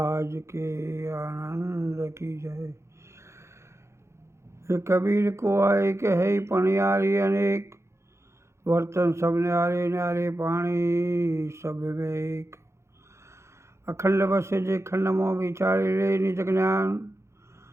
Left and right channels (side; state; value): left; late; 0.13 ms